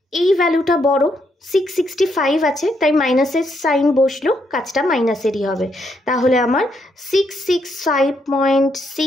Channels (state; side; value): normal; both; correlation 0.76